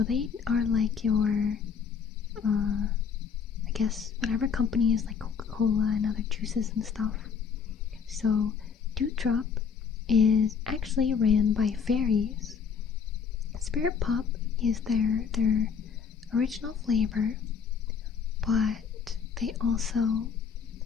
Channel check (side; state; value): right; quieter; 6.4 dB